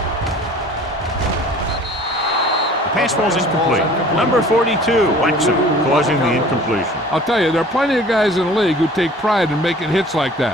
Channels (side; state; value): both; normal; correlation 0.48